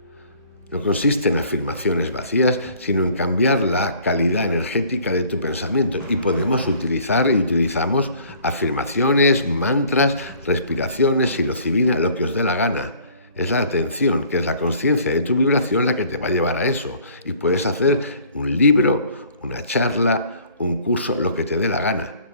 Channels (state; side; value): inverted; both; correlation -0.54